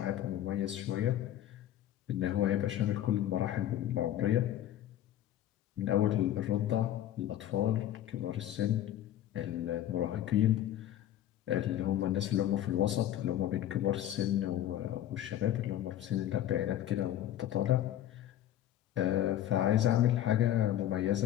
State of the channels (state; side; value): quieter; right; 12.1 dB